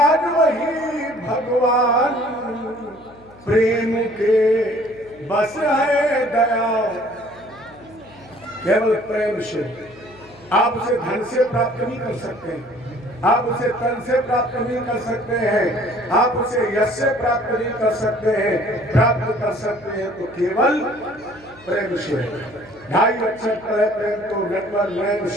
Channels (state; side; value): noise; left; hum, 24 dB below the sound